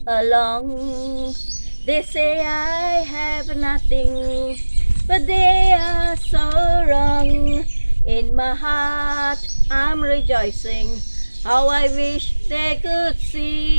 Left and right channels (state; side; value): inverted; both; correlation -1.00